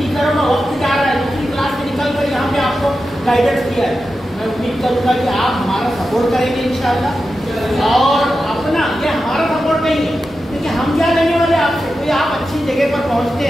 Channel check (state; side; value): normal; both; correlation 0.91